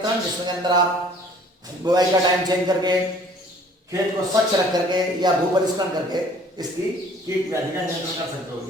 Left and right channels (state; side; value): normal; both; correlation 0.54